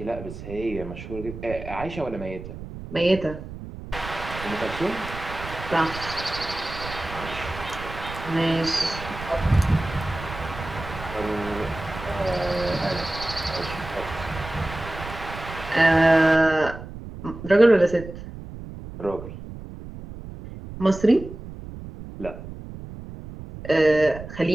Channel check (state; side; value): noise; right; rumble, 12 dB below the sound